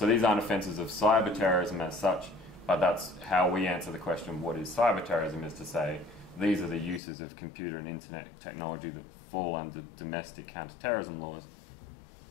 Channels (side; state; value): right; drops out; at 7.0 s